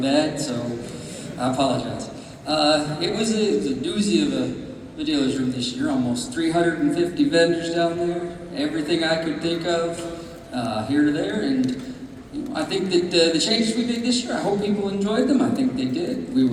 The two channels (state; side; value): identical; both; correlation 1.00